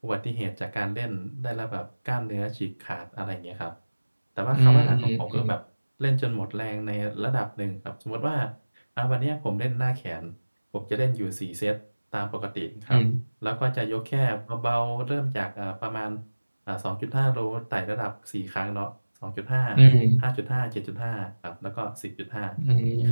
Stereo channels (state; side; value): inverted; both; correlation -1.00